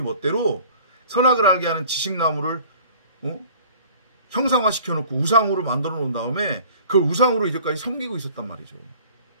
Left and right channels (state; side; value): inverted; both; correlation -0.48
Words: 선악을 알게 하는 지식나무를 형상화시켜놓고 우상으로 만들어 놓은 다음에 그 우상으로 이제까지 섬기고 있었단 말이죠.